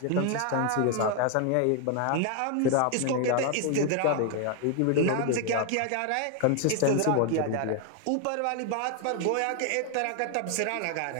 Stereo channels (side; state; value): both; different; correlation 0.00